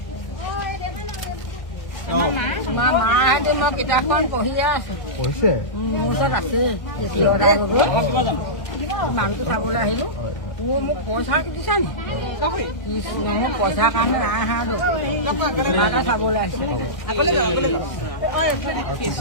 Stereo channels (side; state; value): right; late; 1.6 ms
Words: তোমাৰ মাহঁতে মই কিতাপখন পঢ়িয়ে আছো পঢ়িছে মোৰ ওচৰত আছে মানুহটো চাবলৈ আহিলো মোক পইচা দিছা নি কৃষ্ণ মোক পইচাৰ কাৰণে নাই অহা তোমাকে চাবলৈ আহিছে